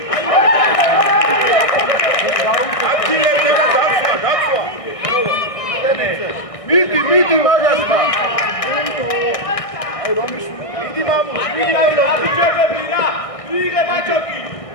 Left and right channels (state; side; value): late; right; 1.6 ms